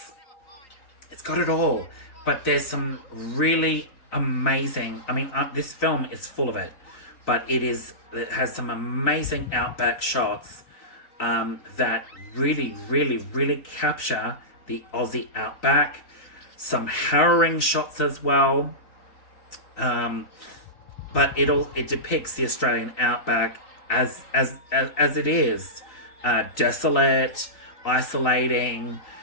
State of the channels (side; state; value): right; late; 3.9 ms